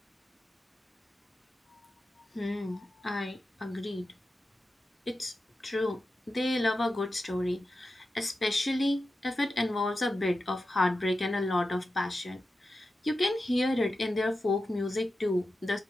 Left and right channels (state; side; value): normal; both; correlation 0.91